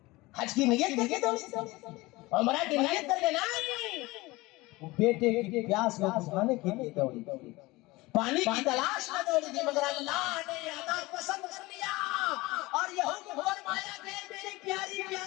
हज की नियत करके दौड़ी, उम्रा की नियत करके नहीं, वो बेटे की प्यास को बुझाने के लिए दौड़ी, पानी की तलाश में दौड़ी थी। मगर अल्लाह ने अदा पसंद कर लिया और ये हुक्म फरमाया कि मेरी प्यारी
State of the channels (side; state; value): right; quieter; 21.2 dB